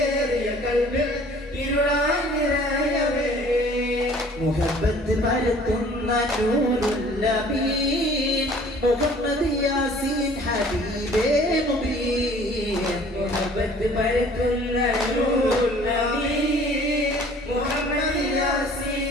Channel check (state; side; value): normal; both; correlation 0.52